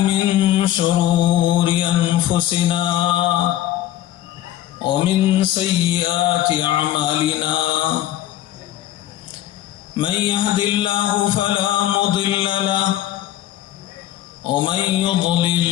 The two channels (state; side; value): quieter; right; 13.3 dB